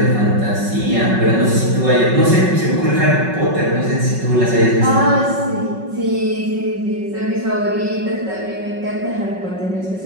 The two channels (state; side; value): late; left; 5.4 ms